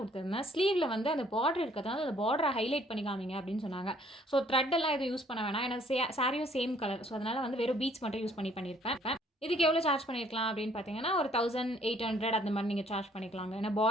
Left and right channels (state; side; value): normal; both; correlation 0.62